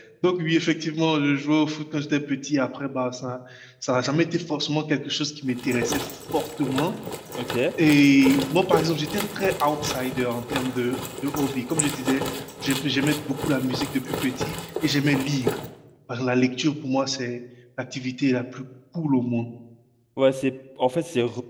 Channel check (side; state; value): both; identical; correlation 1.00